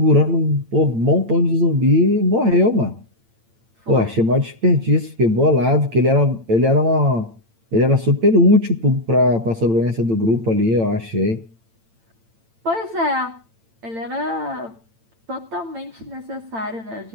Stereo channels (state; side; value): late; left; 8.9 ms